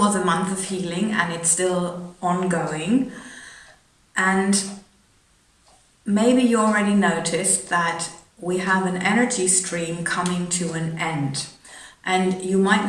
a month of healing and it's still ongoing. And maybe you already noticed that we have an energy stream coming to an end. And you might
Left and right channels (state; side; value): identical; both; correlation 1.00